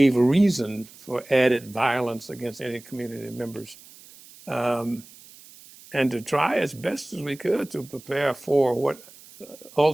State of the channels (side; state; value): right; noise; hiss, 22 dB below the sound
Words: reason for added violence against any community members. And to try as best as we could to prepare for what